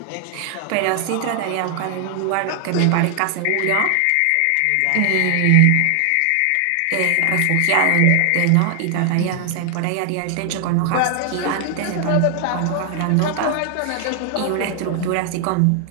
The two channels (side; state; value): both; different; correlation 0.00